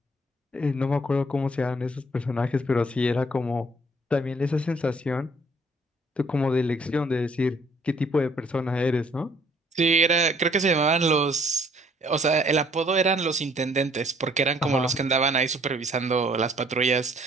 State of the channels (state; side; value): normal; both; correlation 0.61